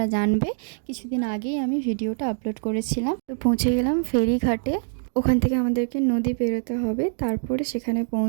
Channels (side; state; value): left; silent; digital silence